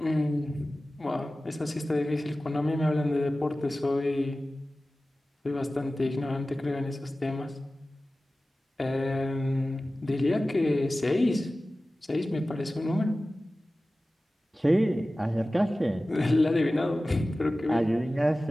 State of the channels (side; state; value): both; normal; correlation 0.96